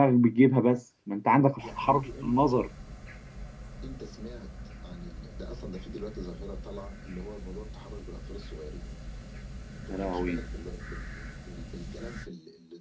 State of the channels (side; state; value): both; identical; correlation 1.00